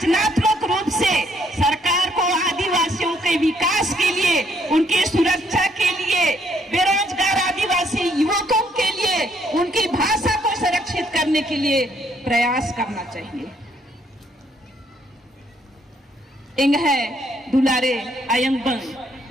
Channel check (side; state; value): both; normal; correlation 0.69